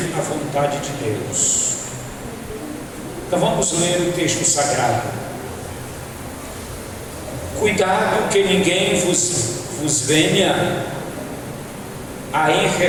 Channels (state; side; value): identical; both; correlation 1.00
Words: a vontade de Deus. Então vamos ler o texto sagrado. Cuidado que ninguém vos venha a